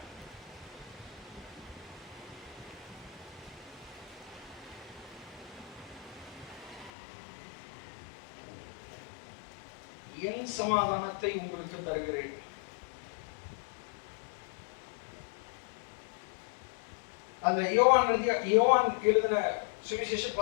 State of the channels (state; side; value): drops out; right; at 6.9 s